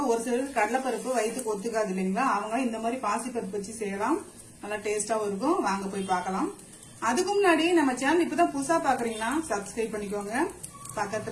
ஒரு சிலருக்கு கடலை பருப்பு வயிற்றுக்கு ஒத்துக்காது இல்லைங்களா, அவங்க இந்த மாதிரி பாசி பருப்பு வச்சு செய்யலாம். நல்லா டேஸ்டாவும் இருக்கும். வாங்க போய் பார்க்கலாம். அதுக்கு முன்னாடி நம்ம சேனல் இப்பதான் புதுசா பாக்குறீங்கன்னா சப்ஸ்கிரைப் பண்ணிக்கோங்க.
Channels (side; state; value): both; identical; correlation 1.00